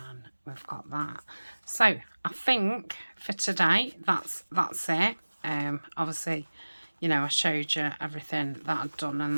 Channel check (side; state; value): both; inverted; correlation -1.00